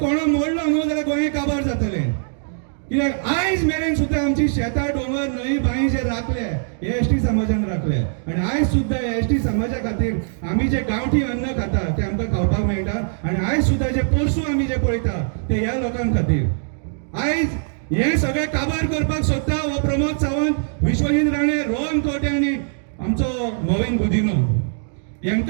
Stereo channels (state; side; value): silent; left; digital silence